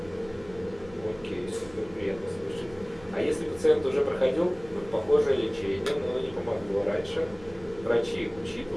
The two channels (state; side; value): noise; right; rumble, 21 dB below the sound